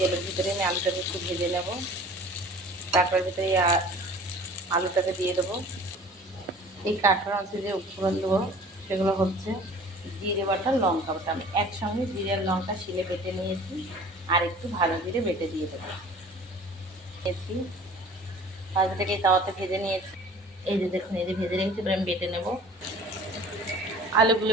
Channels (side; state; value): both; normal; correlation 0.46